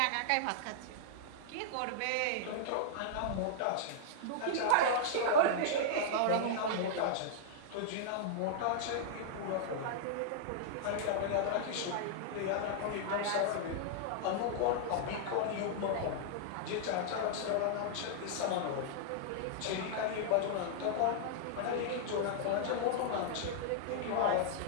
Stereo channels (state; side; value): different; both; correlation -0.02